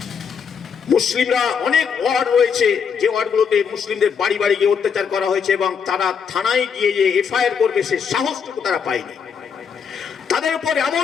মুসলিমরা অনেক ওয়ার্ড রয়েছে, যে ওয়ার্ডগুলোতে মুসলিমদের বাড়ি বাড়ি গিয়ে অত্যাচার করা হয়েছে, এবং তারা থানায় গিয়ে যে এফআইআর করবে সে সাহসটুকু তারা পায়নি। তাদের উপর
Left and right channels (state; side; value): quieter; right; 6.7 dB